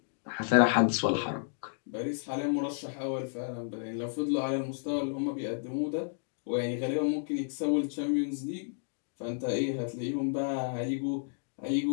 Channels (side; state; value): right; silent; digital silence